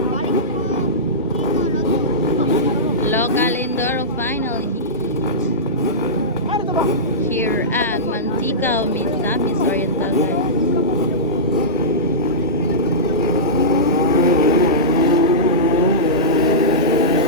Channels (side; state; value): both; normal; correlation -0.16